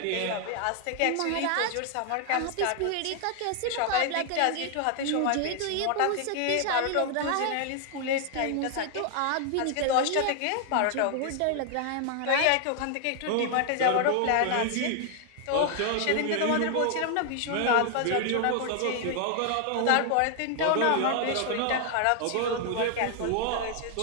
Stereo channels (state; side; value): different; both; correlation 0.00